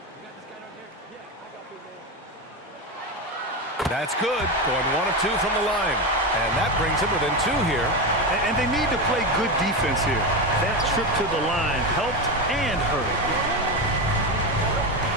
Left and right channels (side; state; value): both; normal; correlation 0.16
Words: That's good. Going 1 of 2 from the line. And that brings him within 2 here. And they need to play good defense here. That trip to the line helped and hurt.